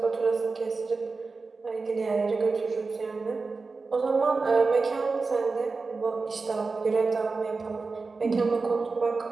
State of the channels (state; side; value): quieter; left; 4.1 dB